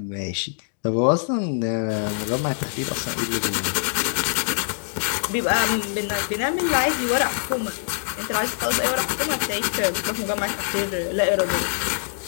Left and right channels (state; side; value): silent; right; digital silence